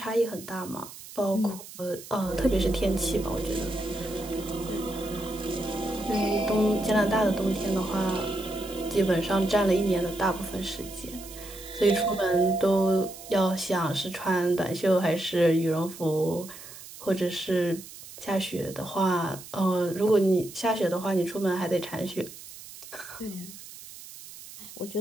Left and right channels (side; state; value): right; noise; hiss, 15 dB below the sound